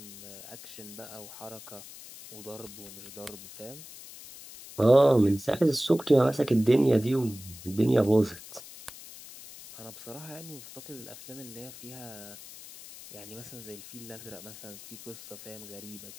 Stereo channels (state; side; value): noise; left; hiss, 15 dB below the sound